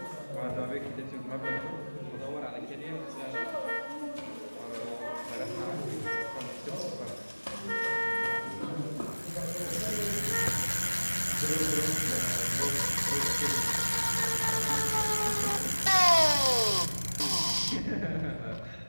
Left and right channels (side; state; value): both; inverted; correlation -1.00